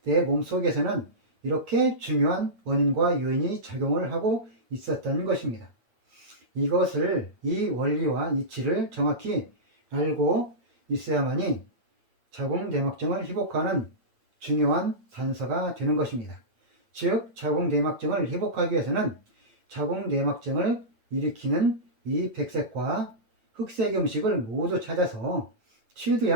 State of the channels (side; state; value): left; late; 8.8 ms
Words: 내 몸속에서는 이렇게 중요한 원인과 요인이 작용을 하고 있었던 것입니다. 이 원리와 이치를 정확히 알고 있어야만이 자궁 내막증을 회복하는 중요한 단서가 되는 것입니다. 즉 자궁 내막증을 회복하기 위해서는 자궁 내막증을 일으키는 이 백색과 흑색 음식을 모두 찾아서